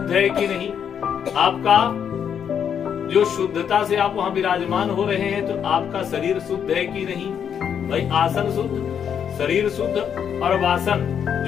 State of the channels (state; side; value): quieter; right; 8.1 dB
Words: है कि नहीं, आपका जो शुद्धता से आप वहां विराजमान हो रहे हैं, तो आपका शरीर शुद्ध है कि नहीं। भाई आसन शुद्ध, शरीर शुद्ध, और वासन